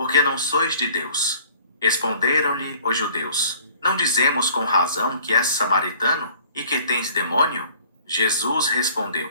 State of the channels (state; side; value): inverted; both; correlation -0.52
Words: não sois de Deus. Responderam-lhe os judeus: Não dizemos com razão que és samaritano e que tens demônio? Jesus